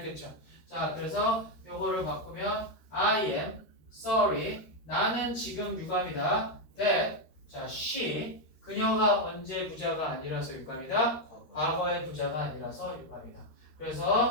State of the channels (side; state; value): right; late; 13 ms